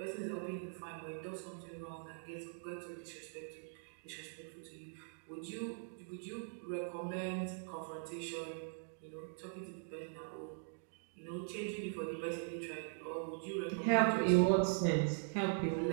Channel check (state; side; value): silent; left; digital silence